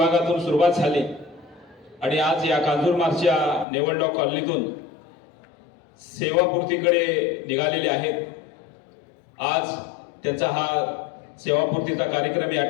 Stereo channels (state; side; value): drops out; right; at 3.7 s